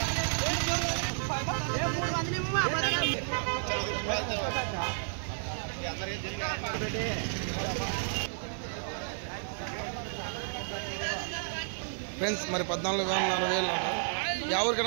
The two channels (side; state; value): left; silent; digital silence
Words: ఫ్రెండ్స్ మరి 14,000 యా